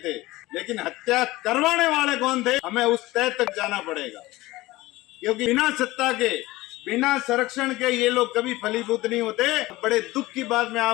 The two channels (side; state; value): right; quieter; 18.9 dB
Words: लेकिन हत्या करवाने वाले कौन थे, हमें उस तय तक जाना पड़ेगा। क्योंकि बिना सत्ता के, बिना संरक्षण के ये लोग कभी फलीभूत नहीं होते। बड़े दुख की बात मैं